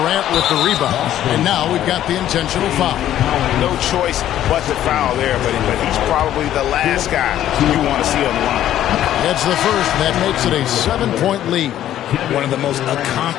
with the rebound. And now we've got the intentional foul. No choice but to foul there, but he's probably the last guy you want to see on the line. That's the first. That makes it a 7-point lead. One of the most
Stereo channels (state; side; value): quieter; right; 12.0 dB